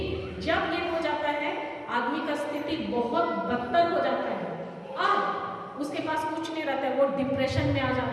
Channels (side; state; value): both; identical; correlation 1.00